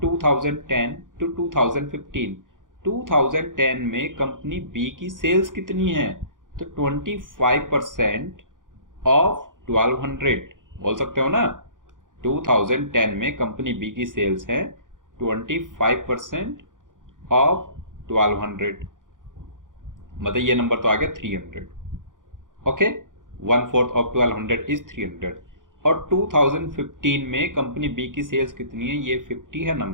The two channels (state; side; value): late; left; 0.88 ms